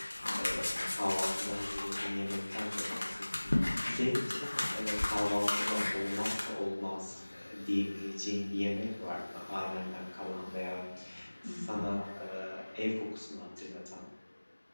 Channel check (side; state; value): both; inverted; correlation -1.00